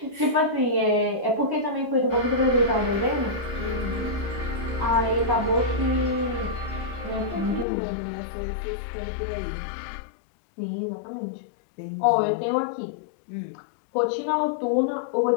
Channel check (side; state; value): right; drops out; at 7.7 s